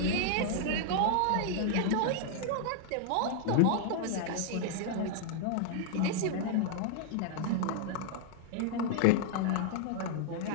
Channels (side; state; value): both; different; correlation -0.01